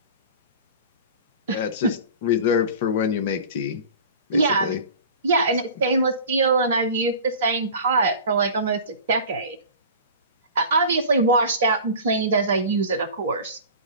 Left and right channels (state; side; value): inverted; both; correlation -0.38